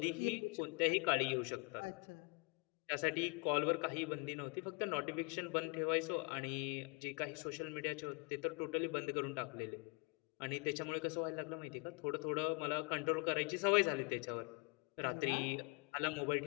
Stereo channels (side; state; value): right; quieter; 32.8 dB